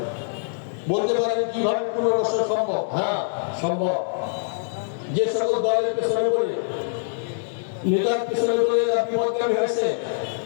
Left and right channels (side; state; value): right; silent; digital silence